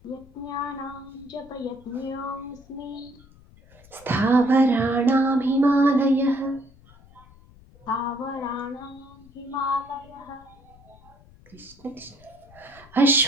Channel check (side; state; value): left; noise; rumble, 25 dB below the sound